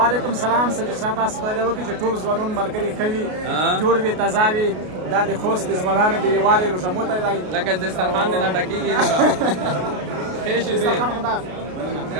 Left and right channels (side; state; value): left; late; 33 ms